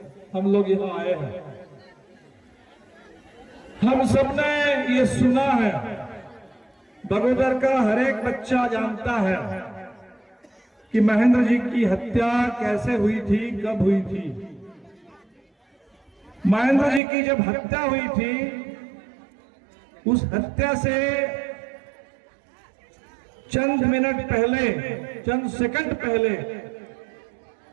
हम लोग यहाँ आए हैं। हम सबने ये सुना है, बगोदर का हर एक बच्चा जानता है कि महेंद्र जी की हत्या कैसे हुई थी, कब हुई थी। महेंद्र जी की जब हत्या हुई थी, उस हत्या से चंद मिनट पहले, चंद सेकंड पहले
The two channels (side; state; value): left; drops out; at 17.0 s